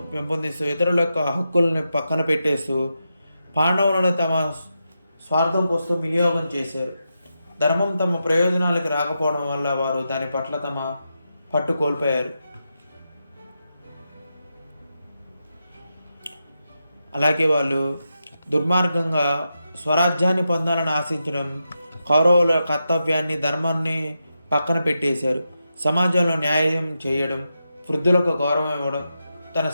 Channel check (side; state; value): both; inverted; correlation -0.87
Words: పెంపొందిస్తూ ఇతరుల యొక్క హక్కుల్ని పక్కన పెట్టేస్తూ పాండవులను తమ స్వార్థం కోసం వినియోగం చేశారు. ధర్మం తమ ప్రయోజనాలకు రాకపోవడం వల్ల వారు దాని పట్ల తమ పట్టు కోల్పోయారు. అలాగే వాళ్ళు దుర్మార్గంగా స్వరాజ్యాన్ని పొందాలని ఆశించడం, కౌరవుల కర్తవ్యాన్ని, ధర్మాన్ని పక్కన పెట్టేశారు. సమాజంలో న్యాయం చేయడం, వృద్ధులకు గౌరవం ఇవ్వడం, తన